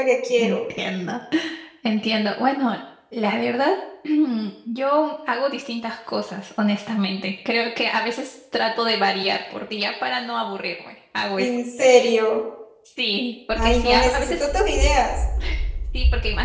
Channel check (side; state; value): both; identical; correlation 1.00